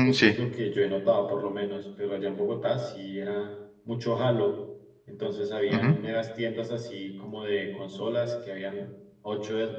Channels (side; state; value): both; identical; correlation 1.00